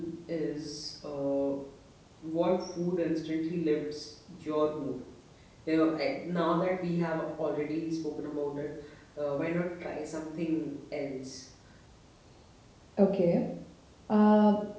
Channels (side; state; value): both; identical; correlation 1.00